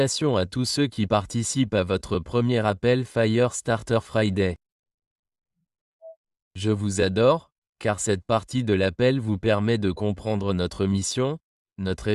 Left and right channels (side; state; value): both; identical; correlation 1.00